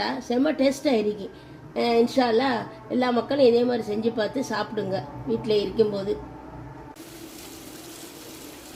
செம்ம டேஸ்ட்டாக இருக்கு. இன்ஷால்லா எல்லா மக்களும் இதே மாதிரி செஞ்சு பார்த்து சாப்பிடுங்க வீட்டில் இருக்கும்போது.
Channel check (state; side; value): identical; both; correlation 1.00